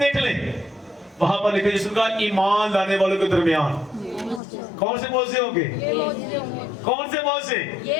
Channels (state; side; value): drops out; right; at 4.4 s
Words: लें, वहां पर लिखा यीशु का ईमान लाने वालों के दरमियान कौन से मोजे होंगे? कौन से मोजे?